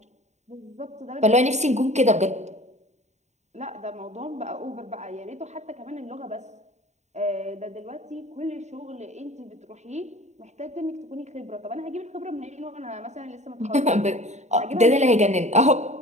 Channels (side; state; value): left; late; 0.33 ms